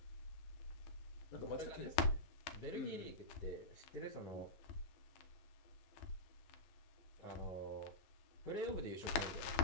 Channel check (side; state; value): right; late; 12 ms